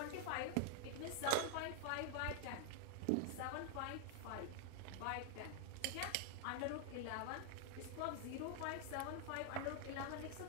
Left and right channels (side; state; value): both; different; correlation 0.00